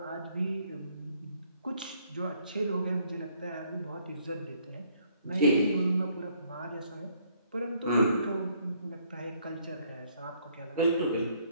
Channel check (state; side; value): inverted; both; correlation -0.66